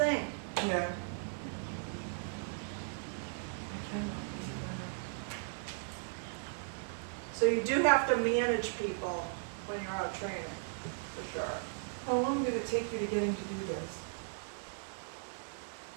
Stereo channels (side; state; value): left; silent; digital silence